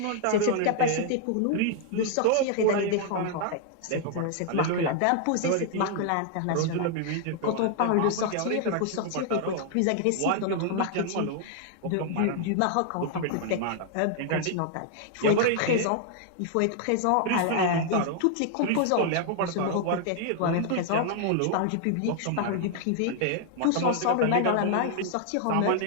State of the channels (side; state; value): both; different; correlation 0.00